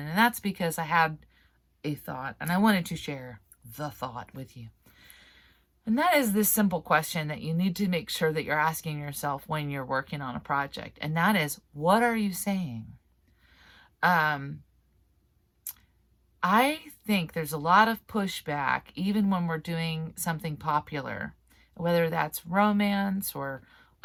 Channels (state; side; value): identical; both; correlation 1.00